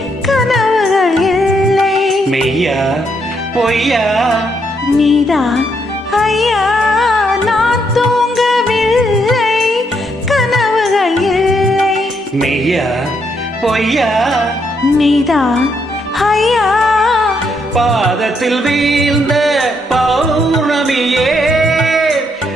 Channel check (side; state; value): both; normal; correlation 0.75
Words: கனவுகள் இல்லை. மெய்யா பொய்யா நீதான் ஐயா, நான் தூங்கவில்லை கனவுகள் இல்லை. மெய்யா பொய்யா நீதான் ஐயா. பாதத்தில் வீழ்ந்த பௌர்ணமியே,